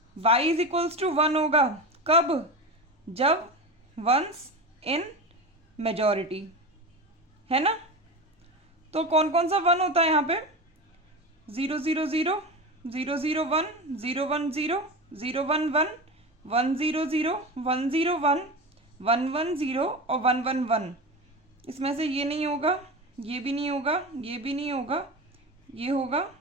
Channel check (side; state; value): both; normal; correlation 0.25